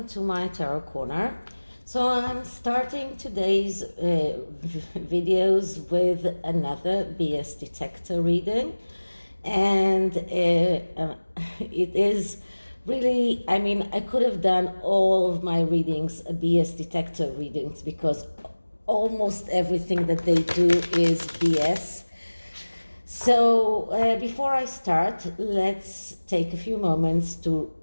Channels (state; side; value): inverted; both; correlation -1.00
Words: to my Tarot Corner. So I'm starting today's videos with another BS detector reading, and it is really, I could have done all of my readings BS detector readings because almost everything that they do is BS. So before I start, let's take a few moments to